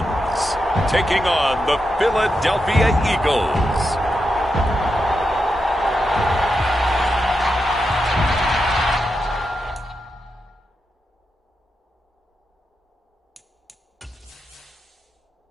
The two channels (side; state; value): both; normal; correlation 0.87